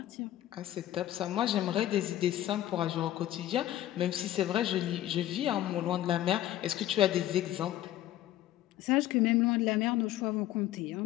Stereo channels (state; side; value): quieter; right; 13.5 dB